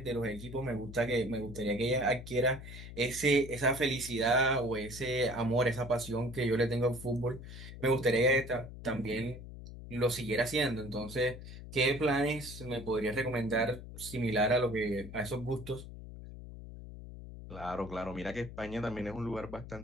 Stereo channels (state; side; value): noise; left; hum, 12 dB below the sound